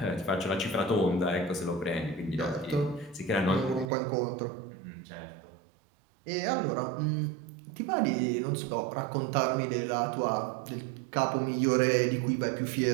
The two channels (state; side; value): drops out; left; at 3.9 s